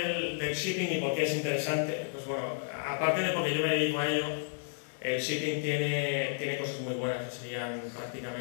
shipping y por qué es interesante? Pues bueno, aparte de porque yo me dedico a ello, el shipping tiene cosas muy buenas, que serían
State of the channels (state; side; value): silent; right; 56 dB below the other